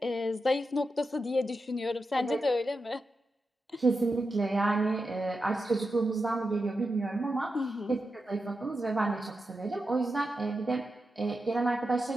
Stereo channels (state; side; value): normal; both; correlation 0.89